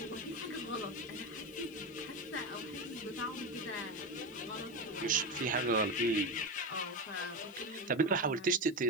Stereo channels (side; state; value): left; noise; hiss, 25 dB below the sound